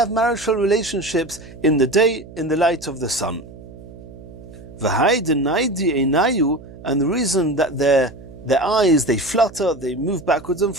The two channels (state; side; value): noise; right; hum, 17 dB below the sound